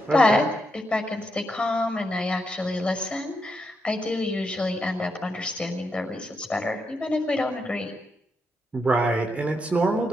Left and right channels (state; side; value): normal; both; correlation 0.82